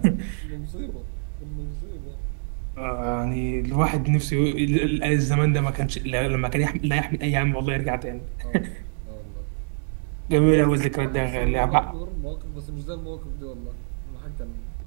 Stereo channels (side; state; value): left; silent; digital silence